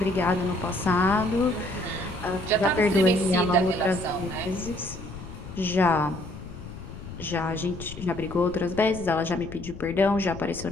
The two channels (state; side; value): noise; left; rumble, 13 dB below the sound